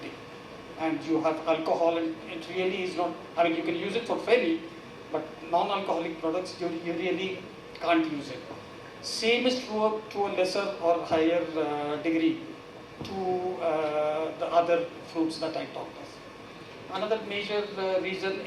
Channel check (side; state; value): both; identical; correlation 1.00